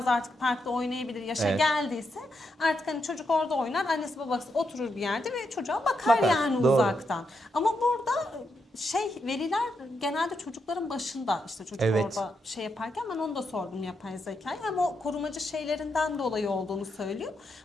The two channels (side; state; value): both; normal; correlation 0.82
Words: artık parkta oynayabilir yaşa Evet. geldiyse artık hani çocuk orada oynar annesi babası oturur bir yerde ve çocuğa bakar Bakar, yani doğru. uzaktan. Ama burada veliler genelde çocukların başında işte çocuk Evet. orada şey yaparken ben onu da sordum yapay zekaya ama o korumacı şeylerinden dolayı olduğunu söylüyor.